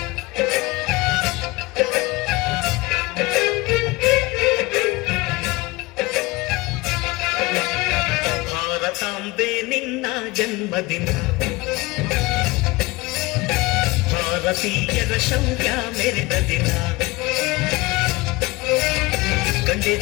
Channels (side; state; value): right; quieter; 22.5 dB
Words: ಭಾರತಾಂಬೆ ನಿನ್ನ ಜನ್ಮದಿನ, ಭಾರತೀಯರ ಶೌರ್ಯ ಮೆರೆದ ದಿನ,